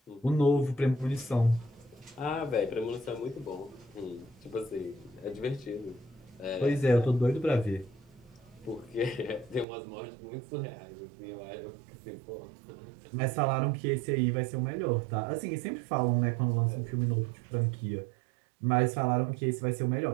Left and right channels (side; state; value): left; drops out; at 9.7 s